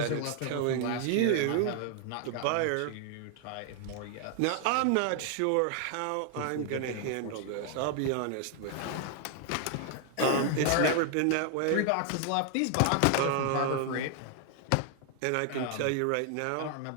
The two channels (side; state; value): both; different; correlation 0.00